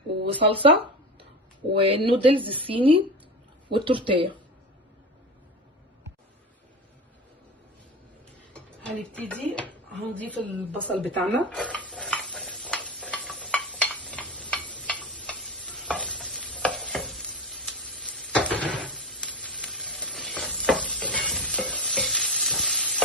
وصلصه، والنودلز الصيني والتورتيه. هنبتدي هنضيف البصل بتاعنا،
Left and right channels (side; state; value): both; normal; correlation 0.25